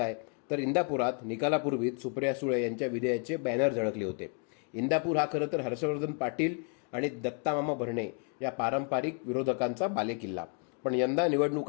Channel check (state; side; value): quieter; right; 39.1 dB